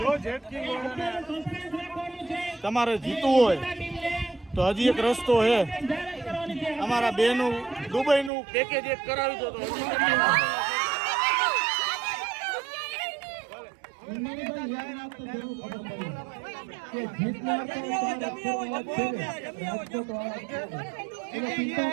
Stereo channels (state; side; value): drops out; left; at 8.3 s